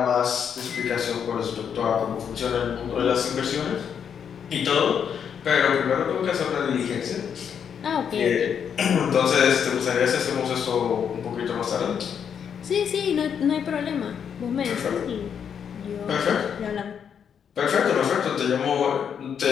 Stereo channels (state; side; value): quieter; right; 7.7 dB